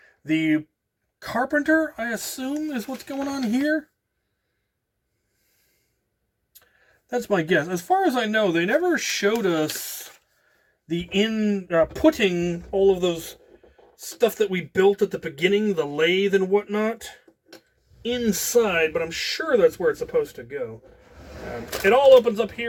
the carpenter, I assume, is what's going on here. That's my guess. As far as I know, they never showed us the putting all of those stuff that we built at the beginning, the lathe and whatnot, inside, but I'm sure that's where it's supposed to go. It all opens up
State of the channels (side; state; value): both; identical; correlation 1.00